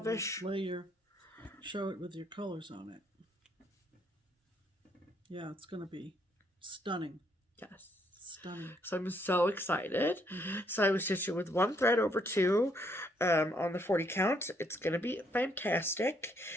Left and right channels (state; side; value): normal; both; correlation 0.71